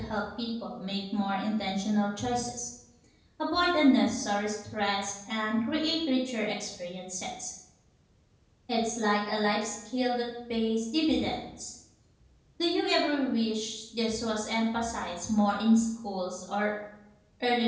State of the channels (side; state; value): both; identical; correlation 1.00